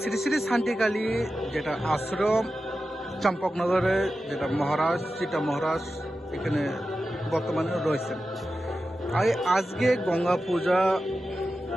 শ্রী শ্রী শান্তিকালী যেটা আশ্রম চম্পকনগরে যেটা মহারাজ চিতা মহারাজ এখানে বর্তমানে রয়েছেন। আজকে গঙ্গা পূজা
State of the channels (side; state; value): both; normal; correlation 0.92